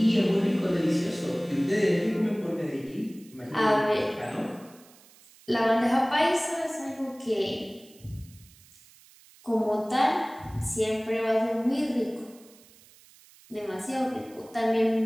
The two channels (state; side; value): noise; right; hiss, 26 dB below the sound